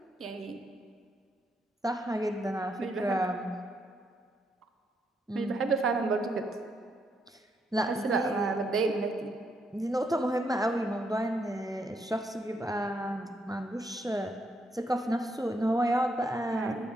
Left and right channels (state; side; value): normal; both; correlation 0.77